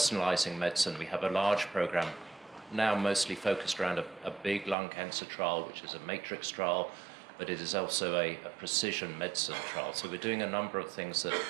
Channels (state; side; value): drops out; left; at 4.8 s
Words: medicine. We have a large program now mostly focused around a big lung cancer trial, which is a matrix trial, but it is also a precision medicine trial. So we're doing a number of things that